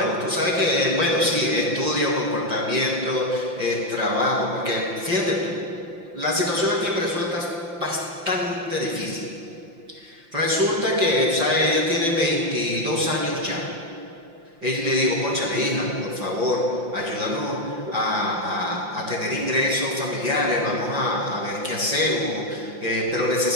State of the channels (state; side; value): late; left; 5.8 ms